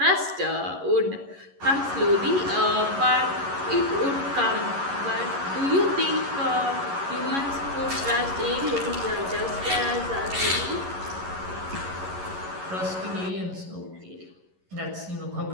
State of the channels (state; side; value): late; left; 11 ms